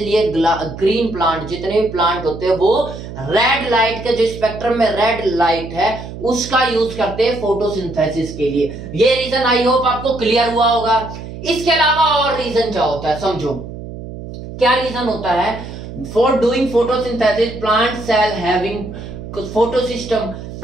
ग्रीन प्लांट, जितने भी प्लांट होते हैं वो रेड लाइट के, जो स्पेक्ट्रम में रेड लाइट है उसका यूज करते हैं फोटोसिंथेसिस के लिए। ये रीजन आई होप आपको क्लियर हुआ होगा। इसके अलावा और रीजन क्या होता है समझो। क्या रीजन होता है? For doing photosynthesis plant cell having photosystem.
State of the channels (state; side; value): noise; right; hum, 11 dB below the sound